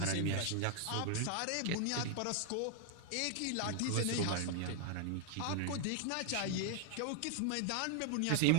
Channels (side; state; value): both; different; correlation 0.00